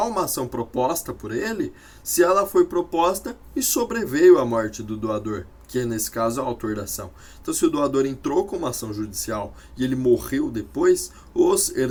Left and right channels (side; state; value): both; identical; correlation 1.00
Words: uma ação proposta por ele se ela foi proposta e sobreveio a morte do doador, que é nesse caso o autor da ação. Então, se o doador entrou com uma ação judicial e ele morreu depois, os